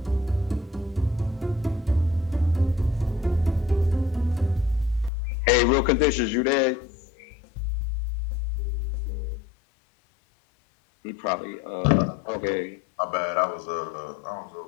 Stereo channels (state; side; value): drops out; right; at 5.1 s